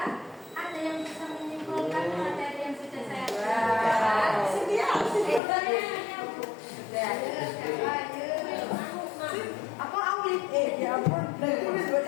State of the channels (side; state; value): right; drops out; at 5.4 s